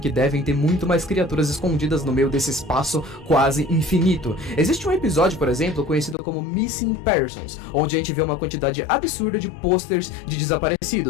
devem ter muito mais criaturas escondidas no meio desse espaço quase infinito. Existe um episódio, por exemplo, conhecido como Missing Persons, onde a gente vê uma quantidade absurda de posters de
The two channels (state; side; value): drops out; right; at 6.2 s